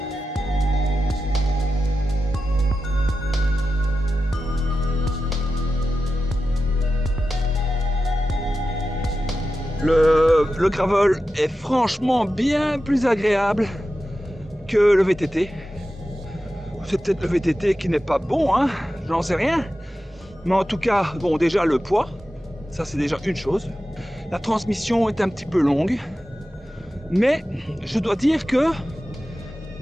Le gravel est franchement bien plus agréable que le VTT. C'est peut-être le VTT qui n'est pas bon, hein, j'en sais rien. Mais en tout cas, bon, déjà le poids, ça c'est déjà une chose. La transmission est un petit peu longue. Mais je dois dire que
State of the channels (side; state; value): both; normal; correlation 0.92